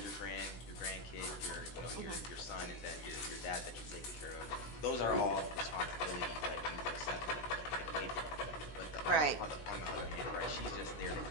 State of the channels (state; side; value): late; right; 16 ms